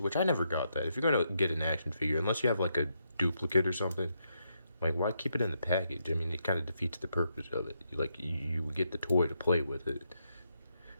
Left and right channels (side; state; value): both; inverted; correlation -0.79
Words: I never got that. If you're gonna get an action figure, unless you have like a duplicate or something, like why keep it in the package? I mean, it kind of defeats the purpose of it. Like you get the toy to play with it.